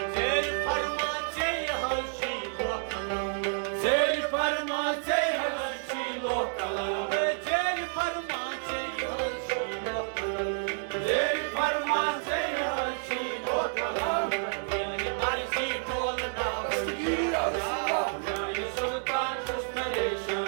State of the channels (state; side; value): silent; left; 58 dB below the other